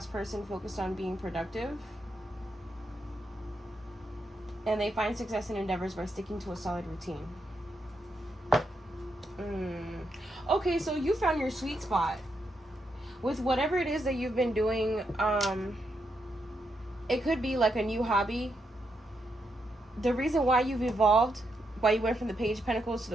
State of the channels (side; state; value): both; normal; correlation 0.82